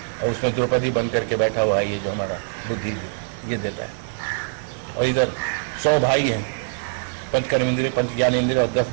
और उसमें द्रौपदी बन करके बैठा हुआ है ये जो हमारा बुद्धि ये देता है। और इधर 100 भाई हैं, पंच कर्म इंद्रिय, पंच ज्ञान इंद्रिय, और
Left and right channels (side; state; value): left; silent; 63 dB below the other